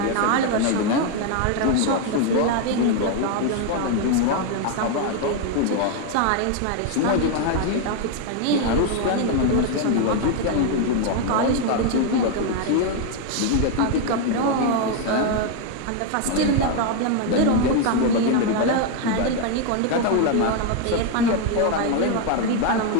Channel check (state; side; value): different; both; correlation 0.01